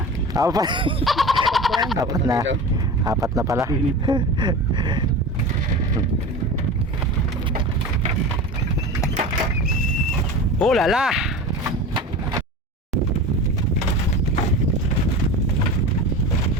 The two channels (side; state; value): both; normal; correlation 0.31